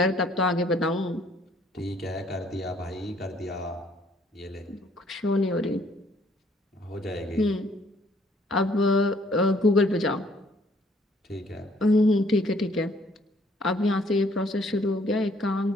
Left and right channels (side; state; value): both; normal; correlation 0.64